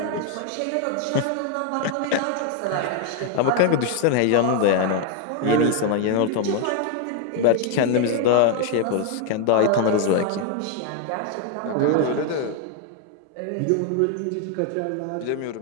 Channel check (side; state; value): both; different; correlation 0.01